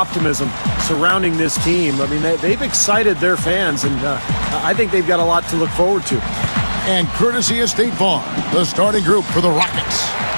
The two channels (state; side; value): inverted; both; correlation -1.00